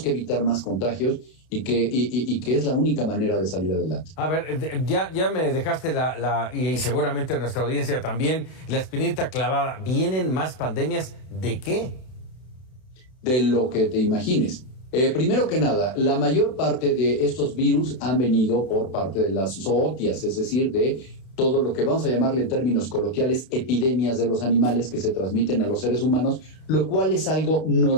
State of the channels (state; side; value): late; right; 31 ms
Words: que evitar más contagios y que es la única manera de salir adelante. A ver, ya me dejaste y seguramente nuestra audiencia también, la espinita clavada. ¿Vienen más pandemias de qué? De lo que te imagines. Primero que nada, la mayor parte de estos virus han venido por parte de las zootias, es decir, de todo lo que vamos a llamarle en términos coloquiales epidemias de los animales que se transmiten a los seres humanos, lo cual es algo